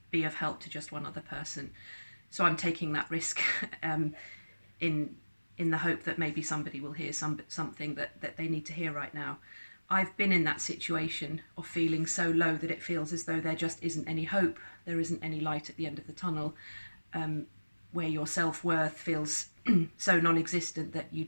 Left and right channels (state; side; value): inverted; both; correlation -1.00